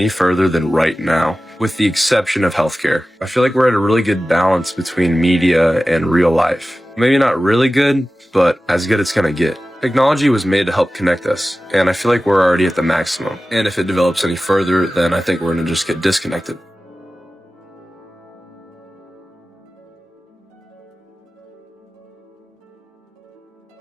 further than right now, with the exception of healthcare. I feel like we're at a really good balance between media and real life. Maybe not really good, but as good as it's gonna get. Technology was made to help connect us, and I feel like we're already at the maximum. And if it develops any further, then I think we're gonna just get disconnected.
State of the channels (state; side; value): normal; both; correlation 0.95